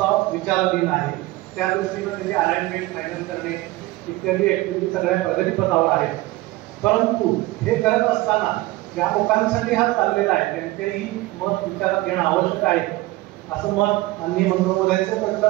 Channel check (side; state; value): left; quieter; 19.0 dB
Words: विचाराधीन आहे. त्या दृष्टीनं त्याची अलाइनमेंट फायनल करणे इत्यादी ऍक्टिव्हिटी सगळ्या प्रगतीपथावर आहेत. परंतु हे करत असताना ज्या लोकांसाठी हा चाललेला आहे त्यांचेही मत विचारात घेणं आवश्यक आहे, असं मत माननीय मंत्रिमहोदयांचं